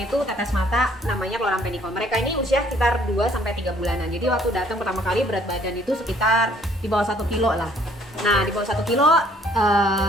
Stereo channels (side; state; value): both; normal; correlation 0.61